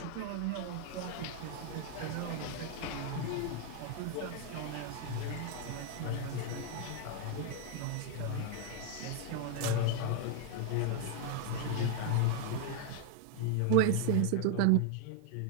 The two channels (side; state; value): both; different; correlation 0.00